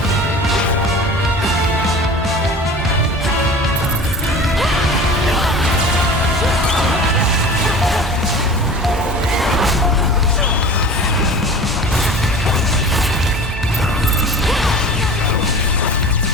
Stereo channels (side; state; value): both; normal; correlation 0.38